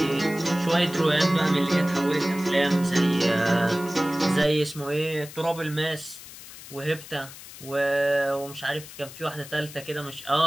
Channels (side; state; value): left; noise; hiss, 15 dB below the sound